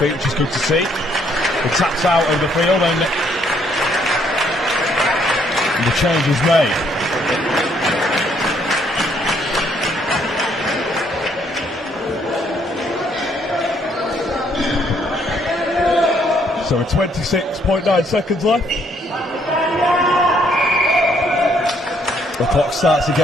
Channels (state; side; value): normal; both; correlation 0.68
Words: which is good to see. He taps out of the field and the change is made. So with 26.9 seconds left, the clock starts